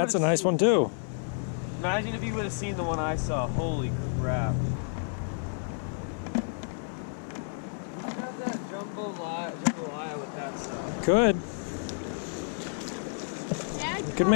a nice one too. Imagine if you would have seen the one I saw. Holy crap. Grab that jambalaya with that stuff. Could. Dad You could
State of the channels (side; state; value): right; silent; 58 dB below the other